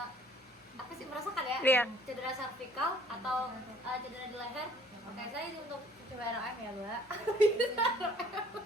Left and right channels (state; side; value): normal; both; correlation 0.56